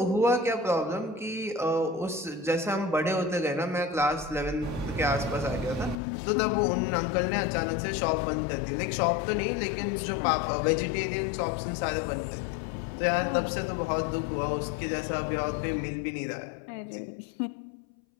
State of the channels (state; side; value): drops out; right; at 6.0 s